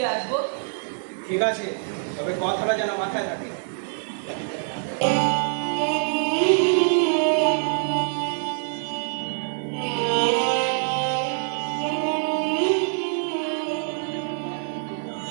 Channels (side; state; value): left; silent; digital silence